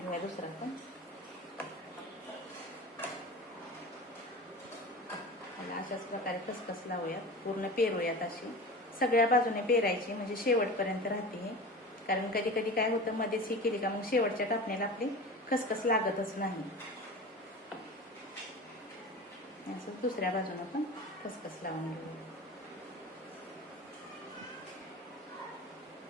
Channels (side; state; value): both; normal; correlation 0.34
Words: दुसरा पण. अशाच प्रकारे खसखस लावूयात, पूर्ण पेरूयात. अशी सगळ्या बाजूने पेरायची, म्हणजे शेवटपर्यंत राहते हे. कारण कधी कधी काय होतं, मध्येच ही केली का मग शेवटच्या कापण्याला आपली खसखस लागतच नाही. असं दुसऱ्या बाजूने पण खसखस लावून घेऊया.